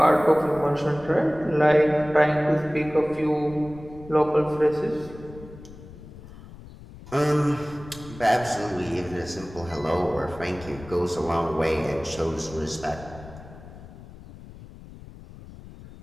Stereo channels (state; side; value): noise; left; rumble, 17 dB below the sound